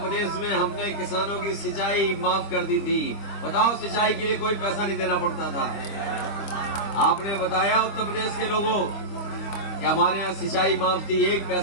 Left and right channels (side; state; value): right; late; 25 ms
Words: में हमने किसानों की सिंचाई माफ कर दी थी। बताओ, सिंचाई के लिए कोई पैसा नहीं देना पड़ता था। आपने बताया उत्तर प्रदेश के लोगों कि हमारे यहाँ सिंचाई माफ थी, एक